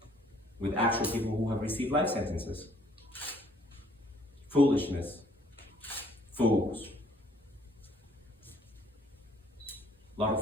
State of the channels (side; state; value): both; normal; correlation 0.61